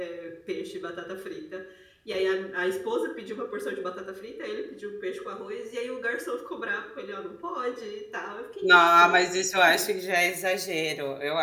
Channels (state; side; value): identical; both; correlation 1.00